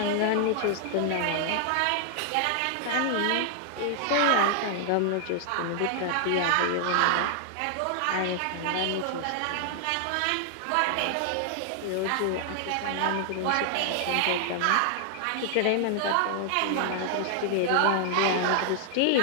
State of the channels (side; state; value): both; different; correlation 0.00